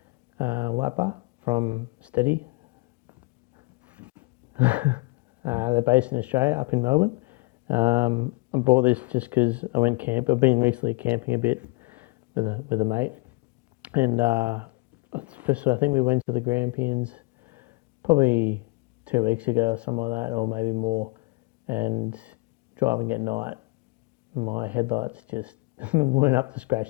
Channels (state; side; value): quieter; right; 26.5 dB